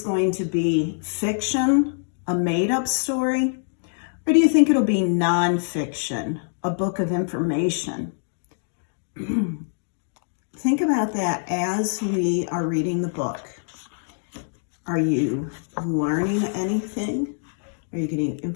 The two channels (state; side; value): silent; right; digital silence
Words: going to be fiction, a made-up story? Or do you think it'll be nonfiction, a book of information? Think about that as we are reading the book. Are you learning anything? Are you getting